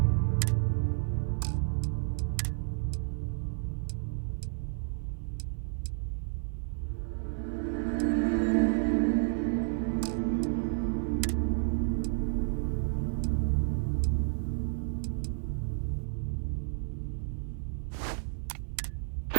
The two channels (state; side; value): silent; left; 57 dB below the other